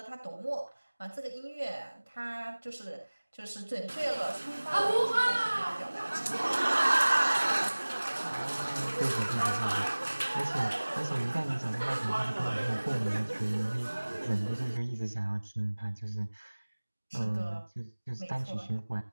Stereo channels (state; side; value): inverted; both; correlation -1.00